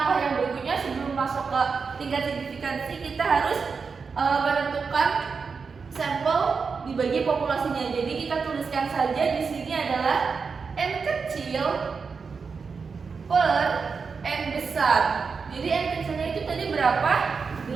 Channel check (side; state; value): left; quieter; 5.2 dB